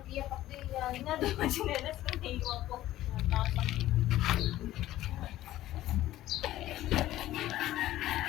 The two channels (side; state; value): right; quieter; 14.6 dB